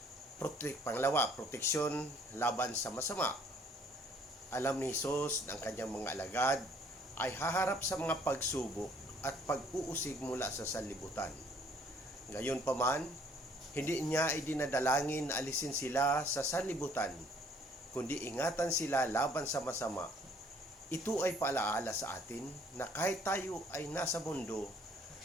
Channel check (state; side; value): normal; both; correlation 0.60